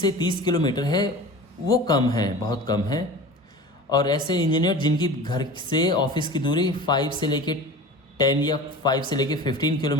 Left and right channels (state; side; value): normal; both; correlation 0.36